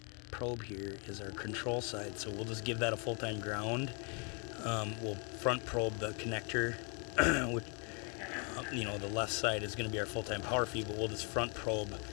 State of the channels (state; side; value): quieter; right; 35.8 dB